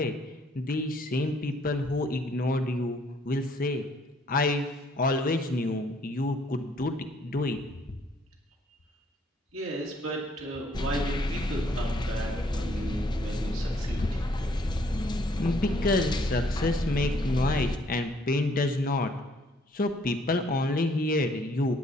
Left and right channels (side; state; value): both; normal; correlation 0.64